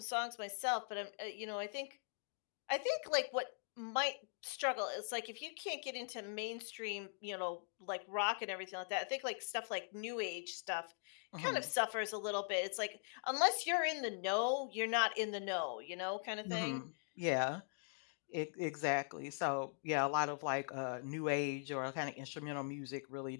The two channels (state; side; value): silent; right; digital silence